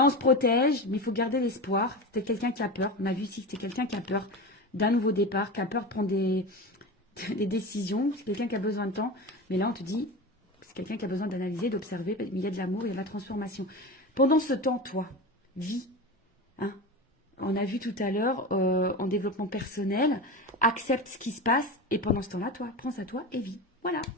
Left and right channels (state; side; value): normal; both; correlation 0.25